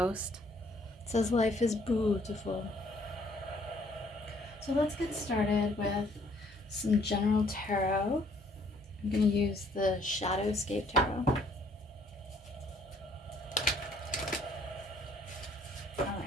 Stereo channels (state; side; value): normal; both; correlation 0.63